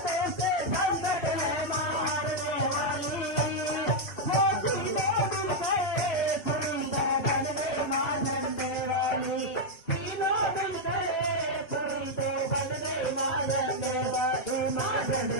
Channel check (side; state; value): right; late; 2.6 ms